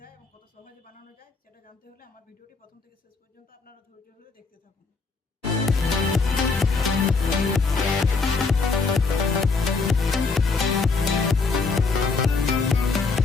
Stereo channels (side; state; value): right; quieter; 4.3 dB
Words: যায় এবং কত সহজে বানানো যায় সেটা জানতে হলে আমার ভিডিওটি প্রথম থেকে শেষ পর্যন্ত আপনারা ধৈর্য ধরে দেখতে থাকুন।